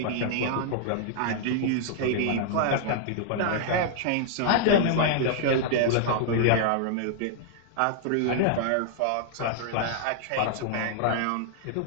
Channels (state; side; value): different; both; correlation -0.01